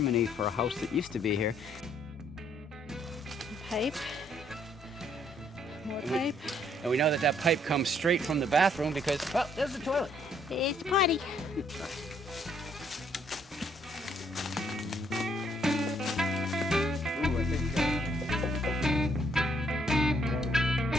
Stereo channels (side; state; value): both; normal; correlation 0.68